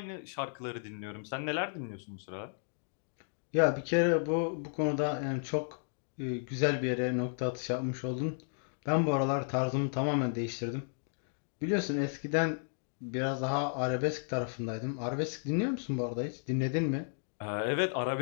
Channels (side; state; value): right; silent; digital silence